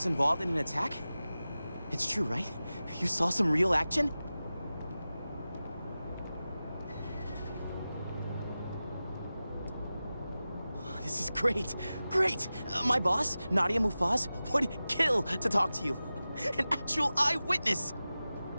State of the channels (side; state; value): both; inverted; correlation -0.95